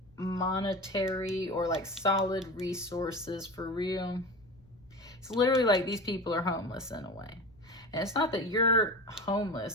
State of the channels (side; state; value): left; noise; rumble, 28 dB below the sound